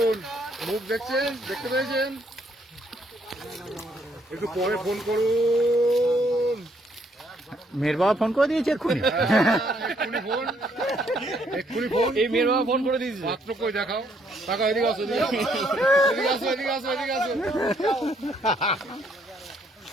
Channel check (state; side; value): normal; both; correlation 0.69